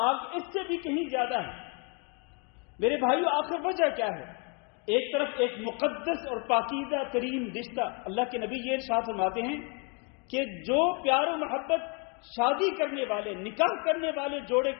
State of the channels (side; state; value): right; quieter; 35.2 dB